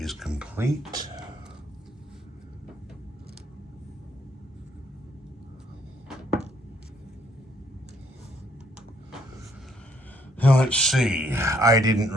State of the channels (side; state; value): both; normal; correlation 0.69